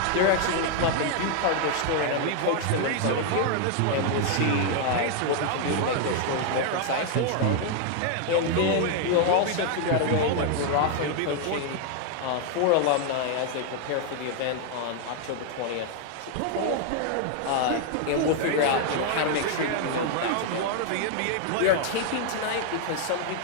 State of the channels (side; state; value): both; different; correlation 0.00